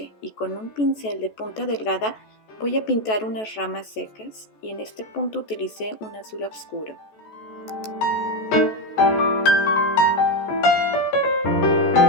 y con un pincel de punta delgada voy a pintar unas ramas secas, y en este punto utilicé un azul oscuro.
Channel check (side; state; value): right; late; 14 ms